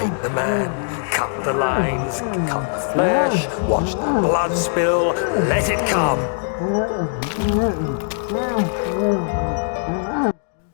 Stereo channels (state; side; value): silent; right; digital silence